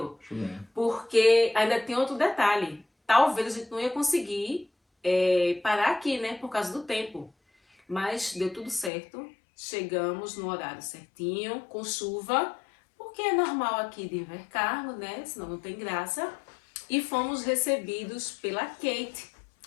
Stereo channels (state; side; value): drops out; right; at 8.9 s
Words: porque ainda tem outro detalhe, talvez a gente não ia conseguir parar aqui, né, por causa do tempo, mas deu tudo certo, chegamos no horário certinho, com chuva, porque é normal aqui de Invercargo, né, senão não tem graça, e fomos recebidos pela Kate,